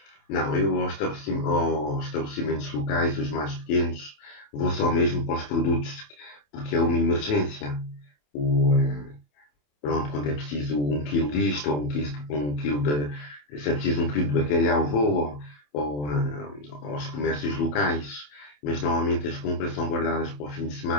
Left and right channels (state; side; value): late; right; 27 ms